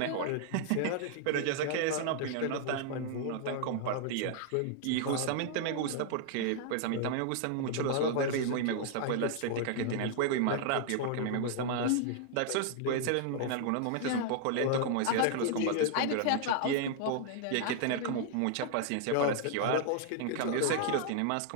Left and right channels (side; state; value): both; different; correlation 0.00